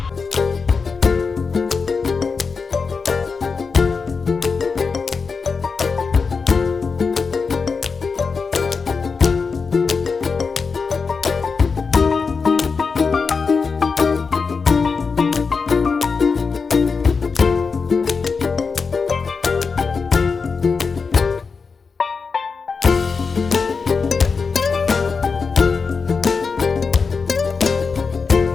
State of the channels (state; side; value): quieter; right; 5.0 dB